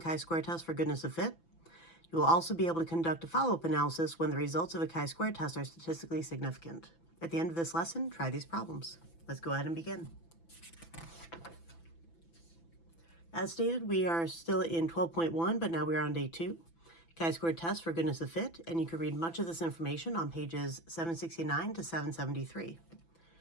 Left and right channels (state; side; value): late; right; 6.0 ms